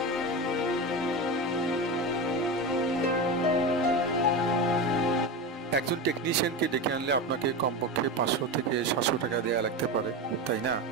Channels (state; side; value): normal; both; correlation 0.21